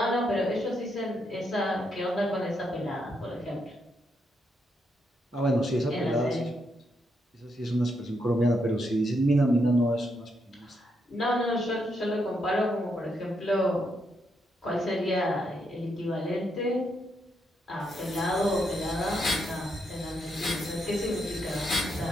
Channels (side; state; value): both; normal; correlation 0.79